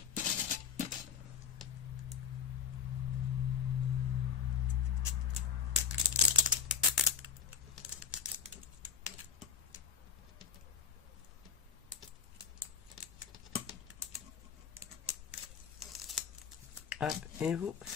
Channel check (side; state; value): right; quieter; 6.9 dB